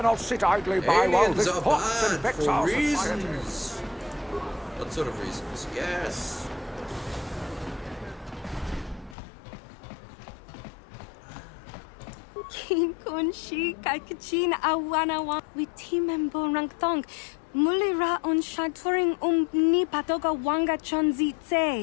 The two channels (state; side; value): drops out; right; at 9.2 s